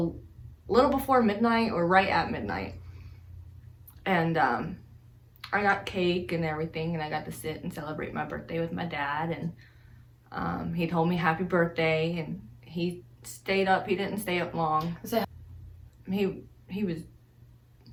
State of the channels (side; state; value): both; identical; correlation 1.00